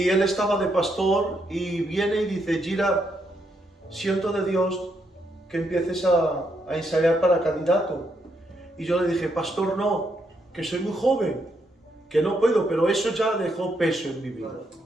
él estaba de pastor y viene y dice, Gira, siento de Dios que empieces a ensayar para candidato. Y yo le dije, pastor, no, que soy muy joven, que no puedo, pero eso ya dejó peso en mi vida.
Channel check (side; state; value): both; normal; correlation 0.78